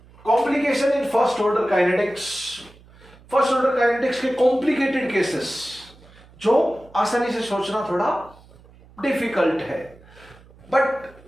complication in first order kinetics. First order kinetics के कॉम्प्लिकेटेड केसेस जो आसानी से सोचना थोड़ा डिफिकल्ट है, but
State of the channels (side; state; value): right; noise; hum, 25 dB below the sound